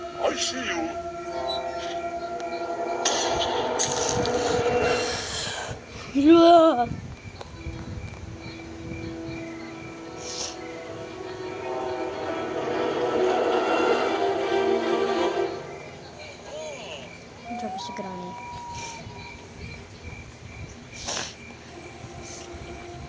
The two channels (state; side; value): identical; both; correlation 1.00